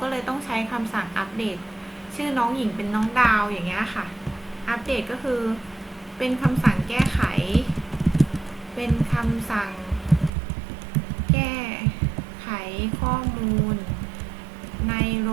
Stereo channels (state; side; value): drops out; left; at 10.3 s